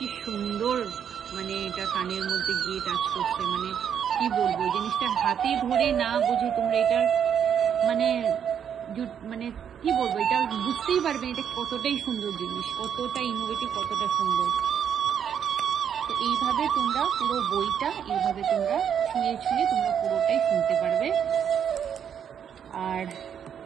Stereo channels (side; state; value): left; quieter; 8.4 dB